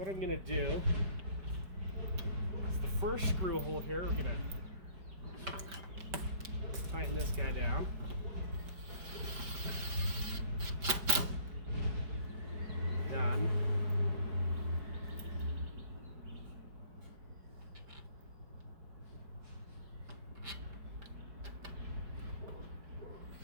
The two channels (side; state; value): left; late; 5.1 ms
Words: I'm going to do is the first screw hole here, we're going to tighten this guy down. Done.